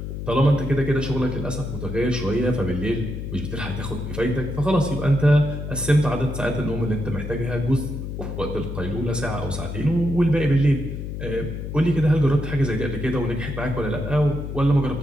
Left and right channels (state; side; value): noise; left; hum, 6 dB below the sound